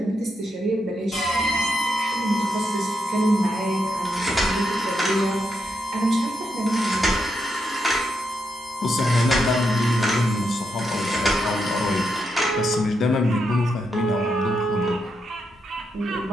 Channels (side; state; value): both; normal; correlation 0.82